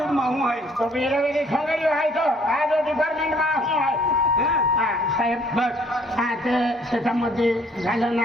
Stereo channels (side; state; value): both; normal; correlation 0.61